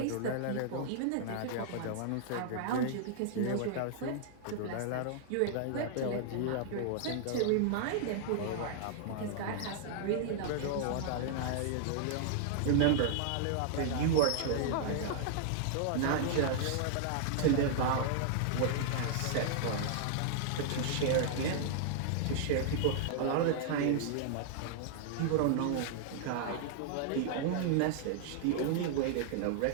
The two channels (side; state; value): both; different; correlation -0.01